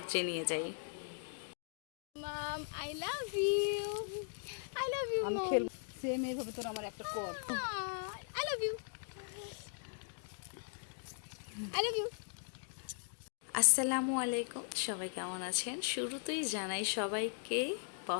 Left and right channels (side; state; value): right; silent; digital silence